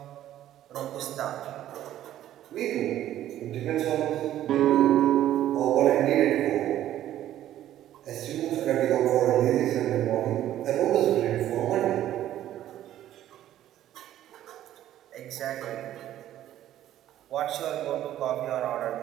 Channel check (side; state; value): left; quieter; 12.5 dB